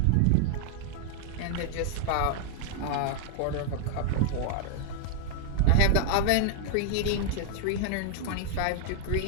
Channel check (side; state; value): both; different; correlation -0.01